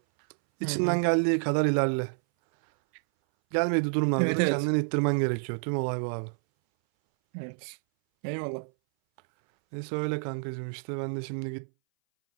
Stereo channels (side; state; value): left; silent; 59 dB below the other